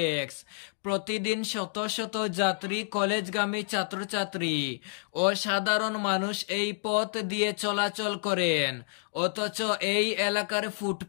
প্রতিদিন শত শত যাত্রী, কলেজগামী ছাত্রছাত্রী ও সাধারণ মানুষ এই পথ দিয়ে চলাচল করেন। অথচ এই এলাকার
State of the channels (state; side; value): silent; right; digital silence